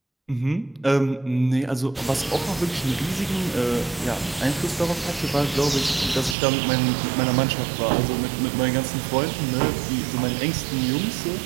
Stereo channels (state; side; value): drops out; left; at 6.4 s